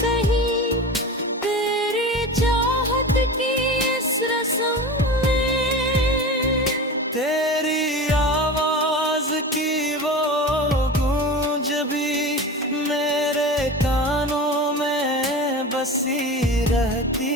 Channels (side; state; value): both; normal; correlation 0.30